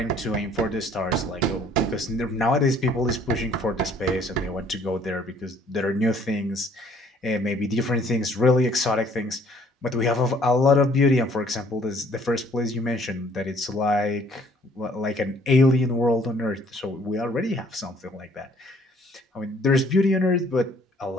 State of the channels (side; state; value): both; normal; correlation 0.60